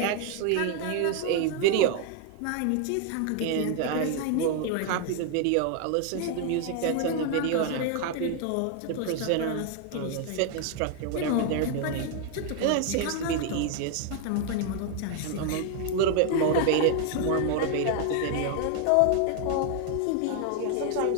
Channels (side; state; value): both; different; correlation 0.00